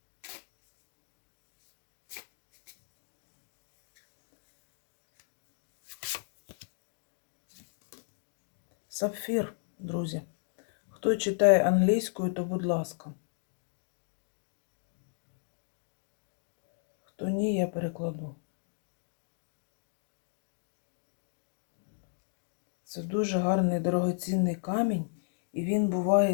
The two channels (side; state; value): right; silent; digital silence